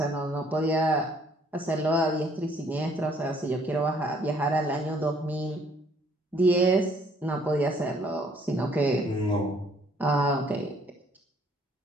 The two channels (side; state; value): both; normal; correlation 0.63